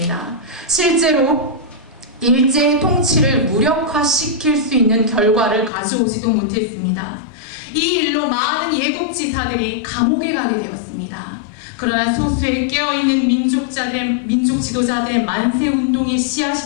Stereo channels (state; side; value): drops out; right; at 5.7 s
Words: 실제로 일제의 통치를 무력화시킬 수 있는 결과를 가져오지도 못했습니다. 이 일로 많은 예국지사들이 감옥에 가게 되었습니다. 그러나 소수의 깨어있는 민족 지도자들의 만세운동의